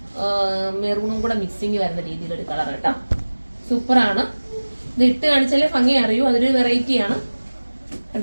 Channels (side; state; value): both; inverted; correlation -1.00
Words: മെറൂണും കൂടെ മിക്സിങ് വരുന്ന രീതിയിലൊരു കളർ കേട്ടോ. സൂപ്പറാണ്. ഇത് ഇട്ട് കാണിച്ചാലേ ഭംഗി അറിയൂ. അതൊരു വെറൈറ്റി ആണ്